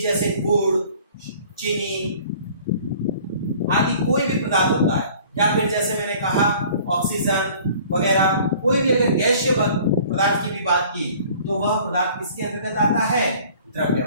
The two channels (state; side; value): inverted; both; correlation -0.51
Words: जैसे गुड़, चीनी आदि कोई भी पदार्थ होता है, या फिर जैसे मैंने कहा ऑक्सीजन वगैरह, कोई भी अगर गैसीय पदार्थ की भी बात की तो वह पदार्थ किसके अंतर्गत आता है?